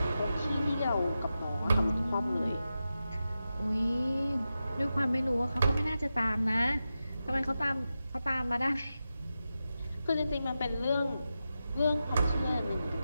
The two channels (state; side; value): inverted; both; correlation -0.91